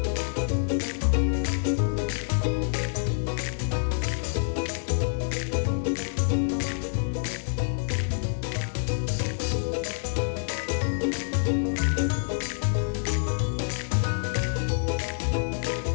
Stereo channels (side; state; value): right; silent; digital silence